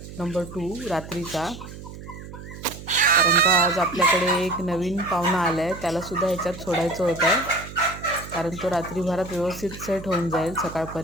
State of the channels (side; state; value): right; noise; hum, 13 dB below the sound